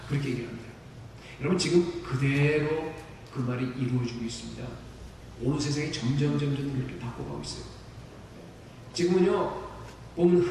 그렇게 얘기합니다. 여러분, 지금 그대로 그 그 말이 이루어지고 있습니다. 오늘 세상이 점점 그렇게 바꿔가고 있어요. 지금은요, 보면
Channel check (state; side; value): identical; both; correlation 1.00